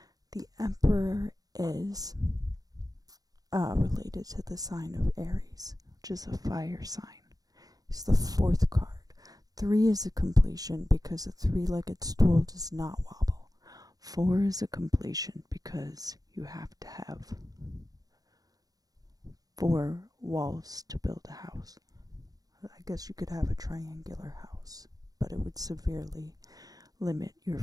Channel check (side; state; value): left; late; 0.18 ms